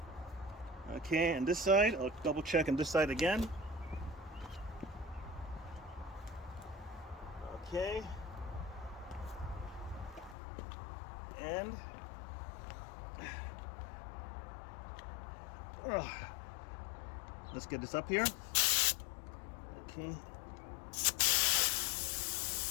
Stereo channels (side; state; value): right; drops out; at 10.4 s